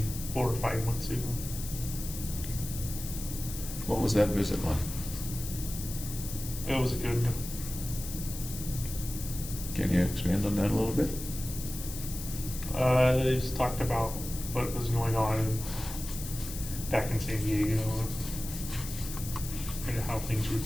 4 or 5 months ago. What was that visit like? It was good. Can you expand on that a little bit? They just talked about what was going on back in San Diego and how things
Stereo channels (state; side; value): noise; left; hiss, 9 dB below the sound